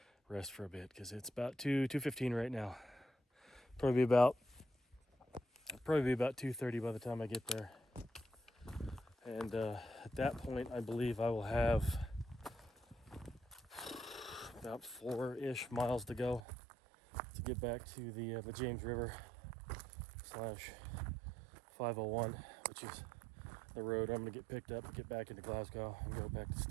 rest for a bit, because it's about 2:15 right now. Probably be about 2:30 by the time I get there. And at that point, I believe I will have About 4-ish miles to go to get back to the James River / 501, which is the road I'm going to get picked up to get back into Glasgow and go back to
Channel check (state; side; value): drops out; left; at 16.4 s